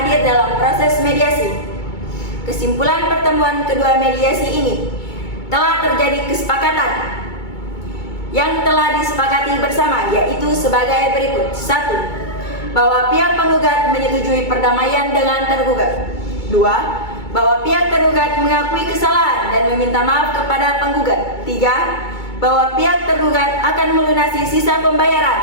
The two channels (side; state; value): right; late; 2.2 ms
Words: dalam proses mediasi. Kesimpulan pertemuan kedua mediasi ini, telah terjadi kesepakatan yang telah disepakati bersama, yaitu sebagai berikut. 1. Bahwa pihak penggugat menyetujui perdamaian dengan tergugat. 2. Bahwa pihak tergugat mengakui kesalahan dan meminta maaf kepada penggugat. 3. Bahwa pihak tergugat akan melunasi sisa